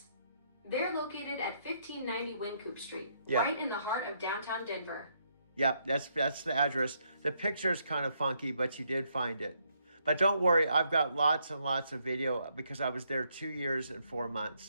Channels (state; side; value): inverted; both; correlation -0.74